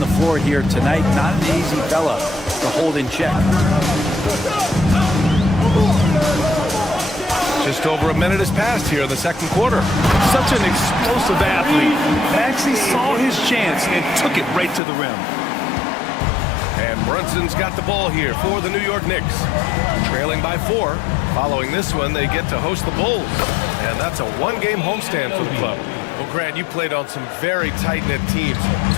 floor here tonight. Not an easy fella to hold in check. Just over a minute has passed here in the second quarter. Such an explosive athlete. Maxey saw his chance and took it right to the rim. And Brunson's got the ball here for the New York Knicks. Trailing by 4. Following this one, they get to host the Bulls. And that's a one-game homestand for the club. Well, Grant, you played on some very tight-knit teams.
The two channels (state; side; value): drops out; right; at 14.8 s